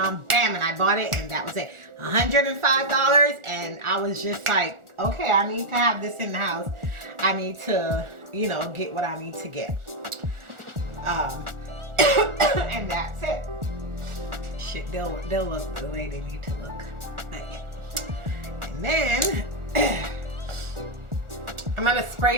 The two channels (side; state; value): left; late; 1.4 ms